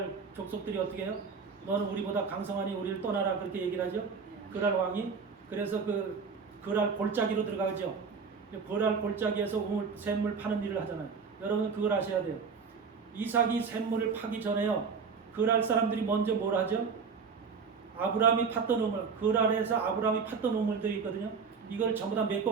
족속들이 어떻게 해요? 너는 우리보다 강성하니 우리를 떠나라. 그렇게 얘기를 하죠. 그랄 왕이. 그래서 그랄 골짜기로 들어가죠. 거랄 골짜기에서 샘물 파는 일을 하잖아요. 여러분 그걸 아셔야 돼요. 이삭이 샘물을 파기 전에요. 거랄 사람들이 먼저 뭘 하죠? 아브라함이 팠던 우물, 거랄에서 아브라함이 팠던 우물들이 있거든요. 이걸 전부 다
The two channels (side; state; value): left; quieter; 5.5 dB